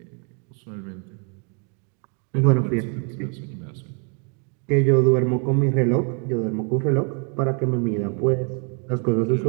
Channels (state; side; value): quieter; left; 39.3 dB